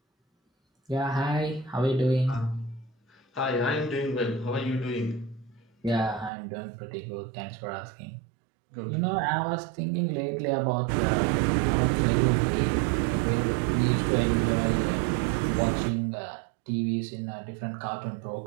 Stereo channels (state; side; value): drops out; left; at 6.3 s